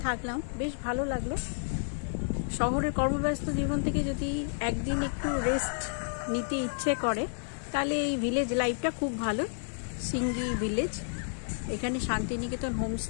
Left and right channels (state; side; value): silent; right; digital silence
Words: থাকলাম, বেশ ভালো লাগলো। শহরের কর্মব্যস্ত জীবন থেকে যদি একদিন একটু রেস্ট নিতে ইচ্ছে করে তাহলে এই ভিলেজ লাইফটা খুব ভালো। সিঙ্গি ভিলেজ, এখানে শান্তিনিকেতন